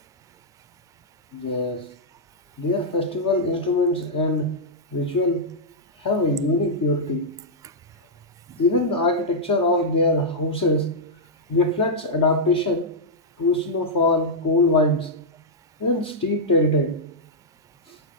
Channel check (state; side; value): normal; both; correlation -0.08